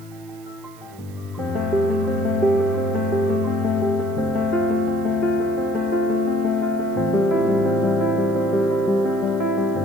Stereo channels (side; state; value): right; noise; hiss, 25 dB below the sound